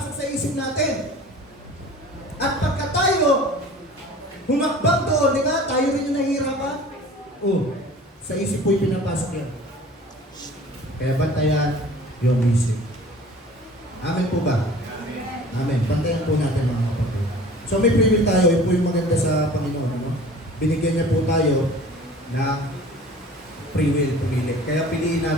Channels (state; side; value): normal; both; correlation 0.44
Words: sa isip natin. At pagka tayo humakbang doon, di ba? Tayo rin yung nahihirapan. Sa isip po ipinapasok yan. Kaya bantayan yung isip. Amen po ba? Amen. Bantayan po natin mga kapatid. So may free will tayo, yun po yung maganda sa Panginoon. Ano? Binigyan niya po tayo ng free will, pumili. Kaya piliin